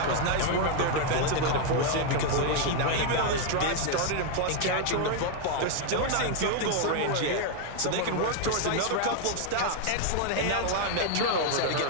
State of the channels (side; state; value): both; different; correlation 0.00